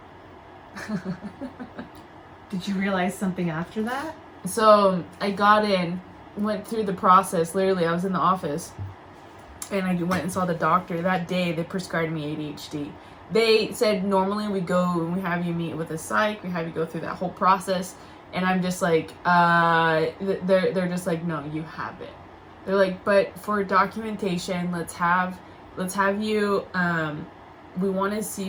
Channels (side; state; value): both; identical; correlation 1.00